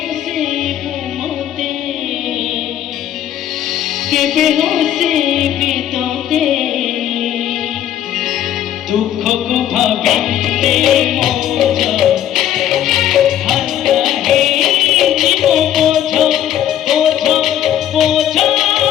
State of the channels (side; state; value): right; quieter; 11.2 dB